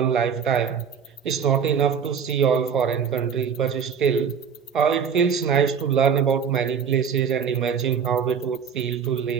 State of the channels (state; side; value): quieter; left; 7.0 dB